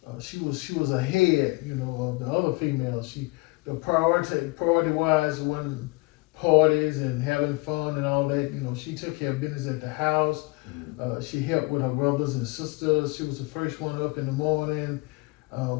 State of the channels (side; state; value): right; quieter; 25.1 dB